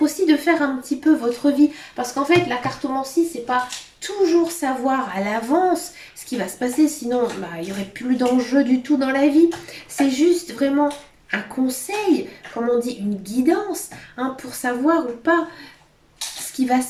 de faire un petit peu votre vie. Parce qu'en fait, la cartomancie, c'est pas toujours savoir à l'avance ce qui va se passer. Sinon, bah, il n'y aurait plus d'enjeu du tout dans la vie. C'est juste vraiment un conseil, comme on dit, une guidance, hein, pour savoir ou pas ce qui va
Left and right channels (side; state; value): both; identical; correlation 1.00